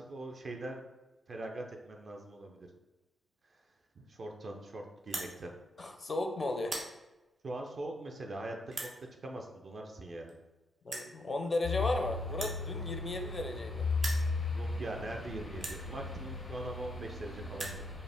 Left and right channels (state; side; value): normal; both; correlation 0.77